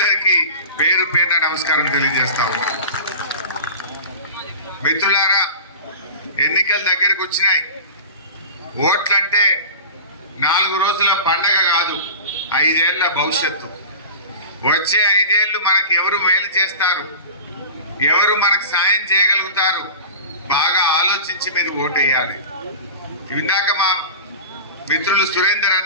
పేరు పేరున నమస్కారం తెలియజేస్తా ఉన్నాను. మిత్రులారా, ఎన్నికల దగ్గరికి వచ్చినాయి. ఓట్లంటే 4 రోజుల పండగ కాదు, 5 ఏళ్ల భవిష్యత్తు. వచ్చే 5 ఏళ్లు మనకు ఎవరు మేలు చేస్తారు, ఎవరు మనకు సాయం చేయగలుగుతారు, బాగా ఆలోచించి మీరు ఓటేయాలి. ఇందాక మా మిత్రులు సురేందర్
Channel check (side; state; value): both; inverted; correlation -0.34